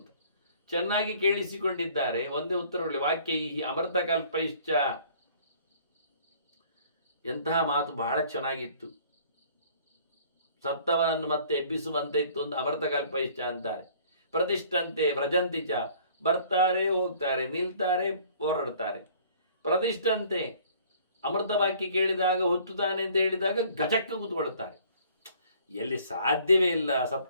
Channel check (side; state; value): both; inverted; correlation -0.55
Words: ಚೆನ್ನಾಗಿ ಕೇಳಿಸಿಕೊಂಡಿದ್ದಾರೆ. ಒಂದೇ ಉತ್ತರಗಳು ವಾಕ್ಯ ಈ ಅಮೃತ ಕಲ್ಪೈಶ್ಚ. ಎಂತಹ ಮಾತು, ಬಹಳ ಚೆನ್ನಾಗಿತ್ತು. ಸತ್ತವನನ್ನು ಮತ್ತೆ ಎಬ್ಬಿಸುವಂತೆ ಇತ್ತು ಅಂತ ಅಮೃತ ಕಲ್ಪೈಶ್ಚ ಅಂತಾರೆ. ಪ್ರತಿಷ್ಠಂತೆ ವ್ರಜಂತಿಚ, ಬರ್ತಾರೆ ಹೋಗ್ತಾರೆ, ನಿಲ್ತಾರೆ ಹೋರಾಡ್ತಾರೆ. ಪ್ರತಿಷ್ಠಂತೆ, ಅಮೃತ ವಾಕ್ಯ ಕೇಳಿದಾಗ ಹುತ್ತುತ್ತಾನೆ ಅಂತ ಹೇಳಿದಾಗ ಗಜಕ್ಕ ಕೂತ್ಕೊಳ್ತಾರೆ. ಎಲ್ಲಿ ಸಾಧ್ಯವೇ ಇಲ್ಲ